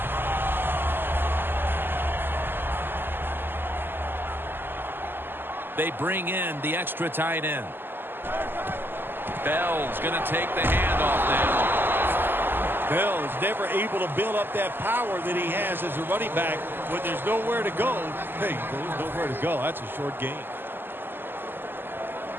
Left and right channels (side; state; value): left; late; 0.096 ms